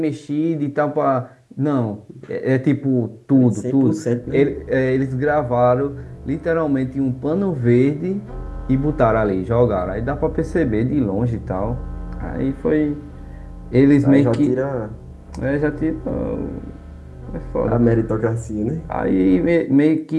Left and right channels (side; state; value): both; identical; correlation 1.00